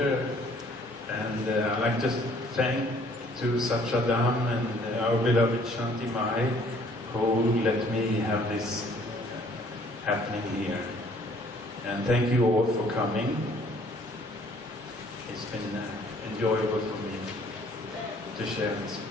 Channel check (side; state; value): both; normal; correlation 0.59